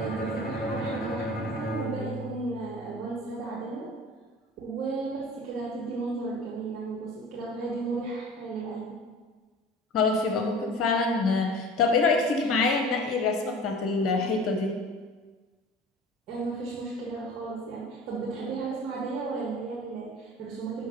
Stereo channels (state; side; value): normal; both; correlation 0.40